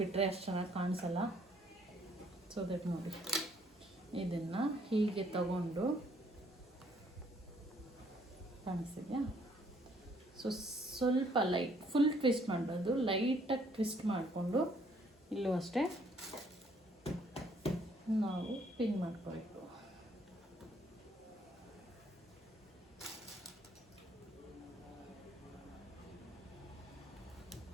ಅಷ್ಟು ಚೆನ್ನಾಗಿ ಕಾಣಿಸಲ್ಲ. ಸೊ ದಟ್ ನೋಡಿ, ಇದನ್ನು ಹೀಗೆ ತಗೊಂಡು ಕಾಣಿಸ್ತಿದೆಯಾ? ಸೊ ಸ್ವಲ್ಪ ಲೈಟ್, ಫುಲ್ ಟ್ವಿಸ್ಟ್ ಮಾಡಬಾರ್ದು, ಲೈಟಾಗಿ ಟ್ವಿಸ್ಟ್ ಮಾಡಿಕೊಂಡು ಇಲ್ಲೂ ಅಷ್ಟೇ ನಾವು ಪಿನ್ ಮಾಡ್ಕೋಬೇಕು.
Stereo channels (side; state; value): both; normal; correlation 0.65